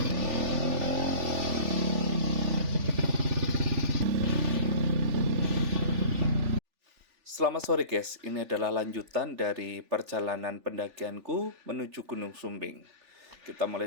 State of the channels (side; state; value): left; late; 3.4 ms